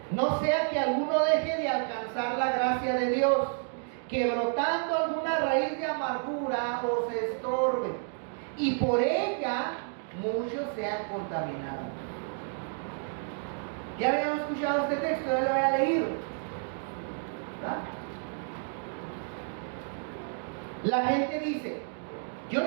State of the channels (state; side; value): silent; left; 57 dB below the other